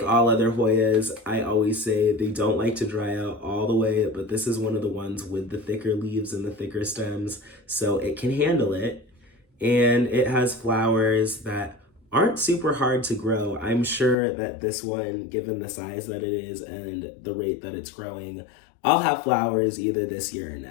all other Hoyas, I always say they don't like to dry out all the way, but this is one of the ones with the thicker leaves and the thicker stems, so it can handle it. And it has flowers that aren't super hard to grow. I'm sure that this one, given the size that it is and the rate that it's growing, I'll have flowers either this year or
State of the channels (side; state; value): right; drops out; at 14.2 s